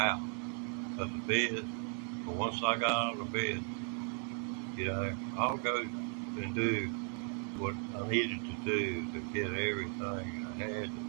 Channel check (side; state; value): left; quieter; 39.4 dB